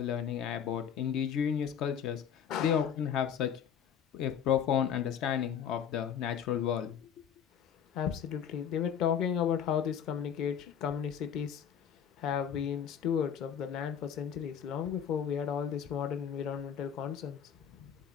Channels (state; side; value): quieter; right; 8.4 dB